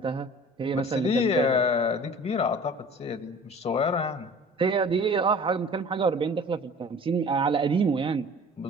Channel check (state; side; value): normal; both; correlation 0.45